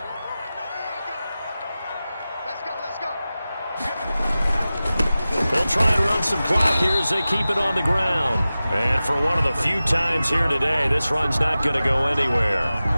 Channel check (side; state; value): both; inverted; correlation -0.95